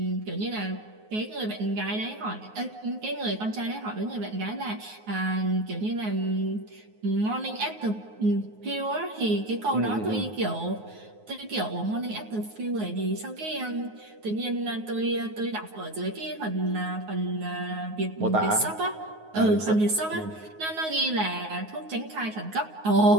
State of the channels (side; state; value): left; late; 9.4 ms